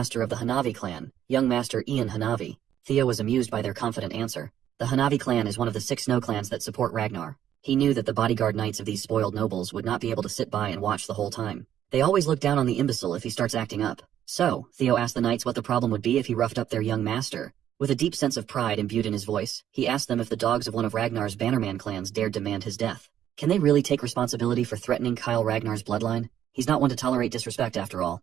of the Hanavi clan, young master Ian Hanavi. Theo was amused by their confident answer. The Hanavi clan is one of the 6 snow clans that support Ragnar. He knew that the bodyguard knights of these spoiled nobles would not be able to sit by and watch the whole time. They always look down on the imbecile if he starts acting up. So, Theo asked the knights what the problem would be if he roughed up their young master. With a deep sense of pride imbued in his voice, he asked them if the dogs of one of Ragnar's Bannerman clans dared demand his death. Can they really take responsibility for threatening Kyle Ragnar's bloodline? He's not one to tolerate disrespect after all.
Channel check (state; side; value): quieter; left; 10.7 dB